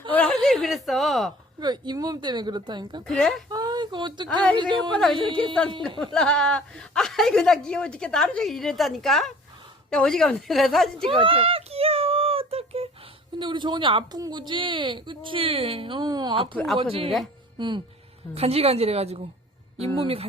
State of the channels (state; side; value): normal; both; correlation 0.48